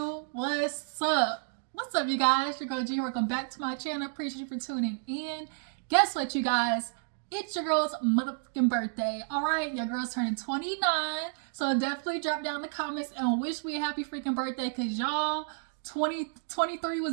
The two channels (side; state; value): left; silent; digital silence